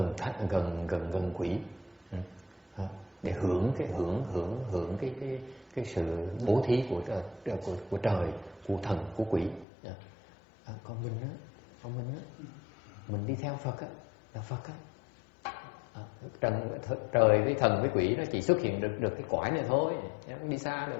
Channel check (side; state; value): right; drops out; at 9.7 s